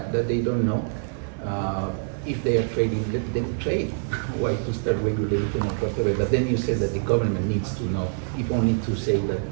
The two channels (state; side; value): silent; left; digital silence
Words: that they don't know? If they are trading, let them trade. Why to start regulating or whatever? But then you said that the government needs to know, if only to say